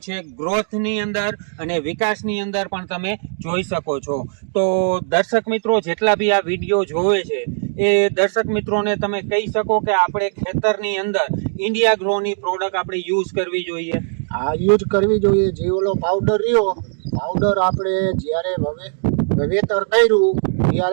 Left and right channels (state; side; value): silent; left; digital silence